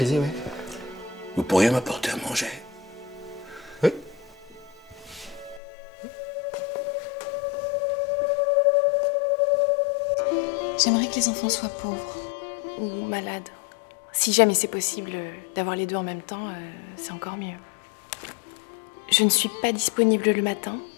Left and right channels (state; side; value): drops out; right; at 5.6 s